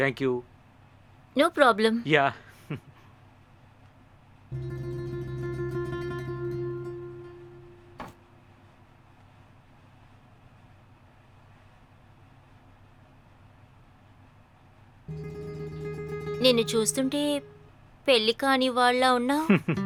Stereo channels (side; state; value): both; identical; correlation 1.00